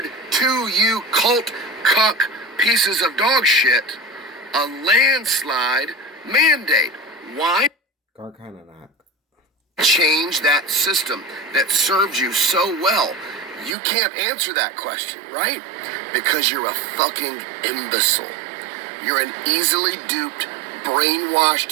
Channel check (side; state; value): left; drops out; at 13.8 s